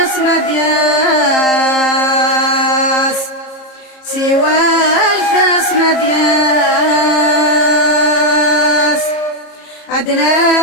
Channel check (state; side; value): late; right; 33 ms